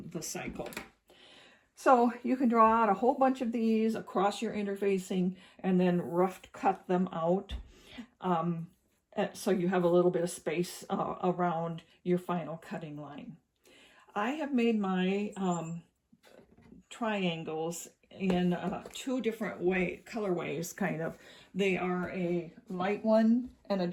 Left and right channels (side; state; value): both; identical; correlation 1.00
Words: the cycle. So you can draw out a whole bunch of these across your interfacing and then rough cut them out, so you have a little bit of space around your final cutting line. I have made my triangles in 2 different colorways, kind of. They are a light one and a